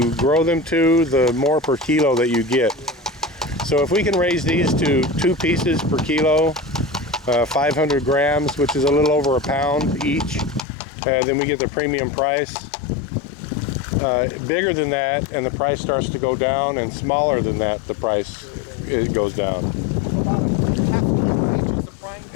grow them to, the more per kilo that you get. So if we can raise these to 2 pieces per kilo, 500 grams, which is a little over a pound each, then we get the premium price. Bigger than that, and the price starts to go down, and smaller than that, the price goes down. About a half a kilo each is the prime?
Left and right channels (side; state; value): right; drops out; at 10.7 s